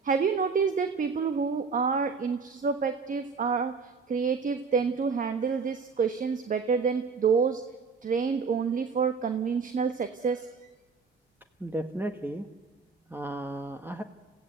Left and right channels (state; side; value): quieter; left; 5.1 dB